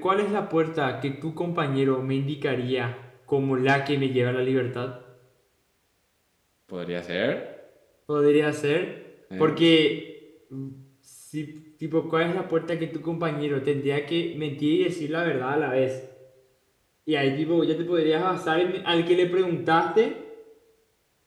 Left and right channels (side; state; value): both; identical; correlation 1.00